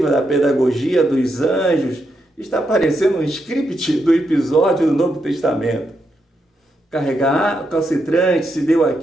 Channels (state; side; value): normal; both; correlation 0.82